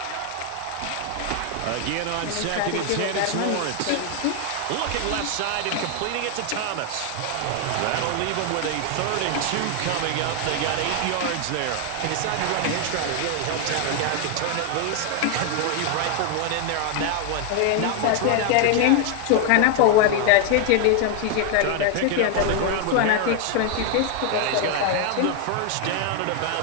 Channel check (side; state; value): both; different; correlation 0.00